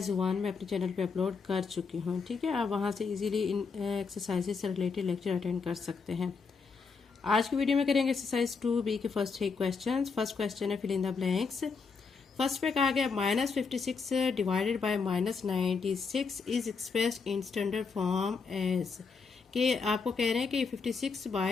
1 मैं अपने चैनल पे अपलोड कर चुकी हूँ। ठीक है, आप वहाँ से इजीली इन एक्सरसाइजेज से रिलेटेड लेक्चर अटेंड कर सकते हैं। आज की वीडियो में करेंगे एक्सरसाइज 2B के फर्स्ट 3 क्वेश्चन। फर्स्ट क्वेश्चन है fill in the blanks. First पे कहा गया -56 divided by -96 is expressed in standard form as, कि आपको कह रहे हैं कि 56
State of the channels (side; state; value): right; quieter; 5.0 dB